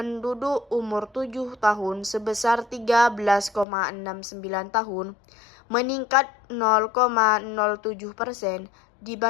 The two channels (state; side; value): drops out; right; at 3.7 s